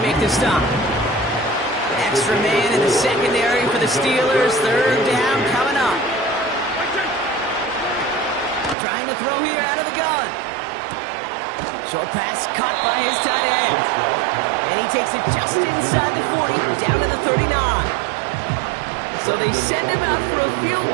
make the stop. Extra man in the secondary for the Steelers. 3rd down coming up. Trying to throw here out of the gun. Short pass caught by his tight end. And he takes it just inside the 40, down to the 39. So they send him out for a field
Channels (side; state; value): left; drops out; at 8.8 s